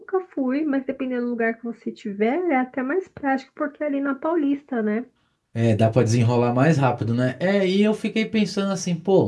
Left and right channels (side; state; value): both; identical; correlation 1.00